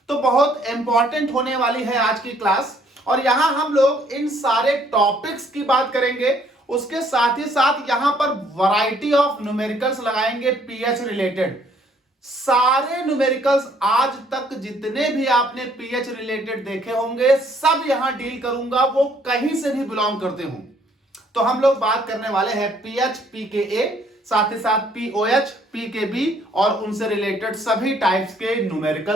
तो बहुत इंपॉर्टेंट होने वाली है आज की क्लास और यहां हम लोग इन सारे टॉपिक्स की बात करेंगे। उसके साथ ही साथ यहां पर वैरायटी ऑफ न्यूमेरिकल्स लगाएंगे पीएच रिलेटेड। सारे न्यूमेरिकल्स आज तक जितने भी आपने पीएच रिलेटेड देखे होंगे सब यहां डील करूंगा, वो कहीं से भी बिलोंग करते हों। तो हम लोग बात करने वाले हैं पीएच पीकेए, साथ ही साथ पीओएच पीकेबी और उनसे रिलेटेड सभी टाइप्स के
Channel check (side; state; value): both; normal; correlation 0.64